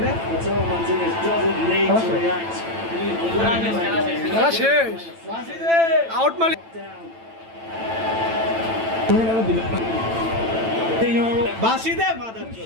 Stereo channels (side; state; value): left; late; 9.0 ms